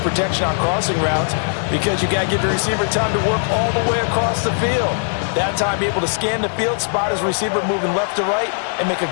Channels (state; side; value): silent; right; digital silence